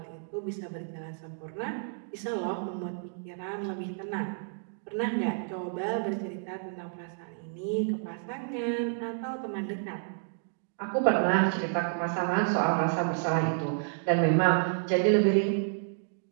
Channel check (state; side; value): silent; left; digital silence